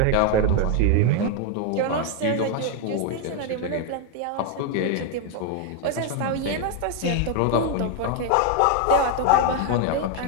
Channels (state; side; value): different; both; correlation 0.01